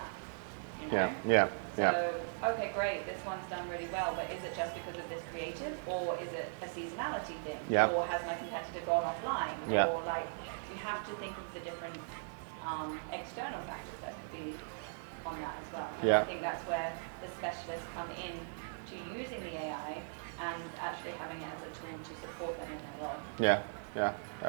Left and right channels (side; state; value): left; silent; digital silence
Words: you know? So, okay, great, this one's done really well, but is it just because of this creative, or is it a seasonality thing? Or has my competitor gone offline? Or like, you have to think of the different external factors that could be on that as well. And I think that's where the specialists come in to using the AI and actually having it as a tool to support them in their role.